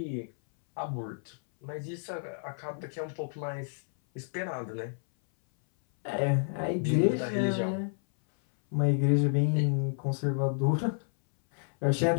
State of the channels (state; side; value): silent; right; 58 dB below the other